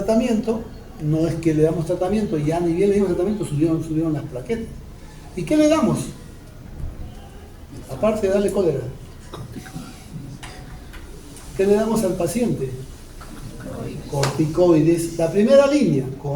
no es que le damos tratamiento y ya ni bien le dimos tratamiento, subieron las plaquetas. ¿Y qué le damos? Aparte de darle cólera. ¿Qué le damos al paciente? Corticoides. La primera línea,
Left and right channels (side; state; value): both; identical; correlation 1.00